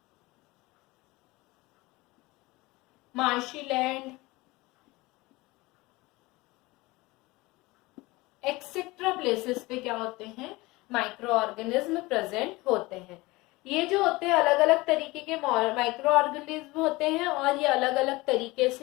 marshy land, etcetera places पे क्या होते हैं? माइक्रो ऑर्गेनिज्म प्रेजेंट होते हैं. ये जो होते हैं अलग अलग तरीके के माइक्रो ऑर्गेनिज्म होते हैं और ये अलग अलग तरीके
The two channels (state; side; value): quieter; right; 21.7 dB